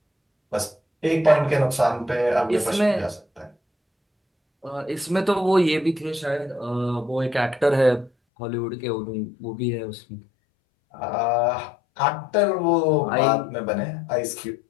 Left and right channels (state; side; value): drops out; right; at 8.1 s